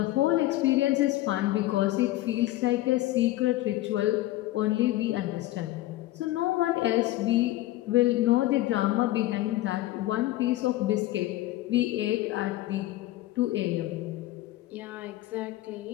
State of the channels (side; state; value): right; quieter; 16.4 dB